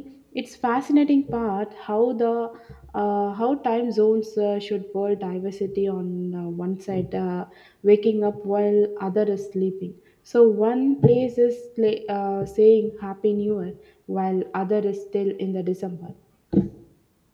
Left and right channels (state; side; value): identical; both; correlation 1.00